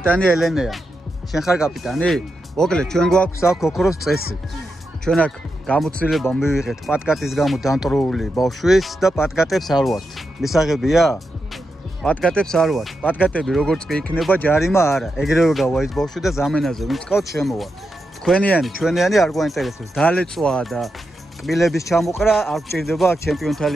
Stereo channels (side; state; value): both; normal; correlation 0.87